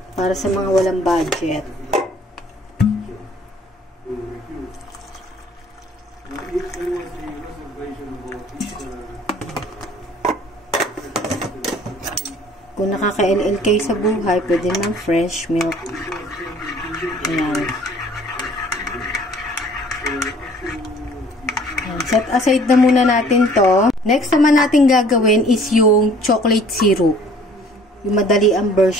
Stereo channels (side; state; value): both; normal; correlation 0.54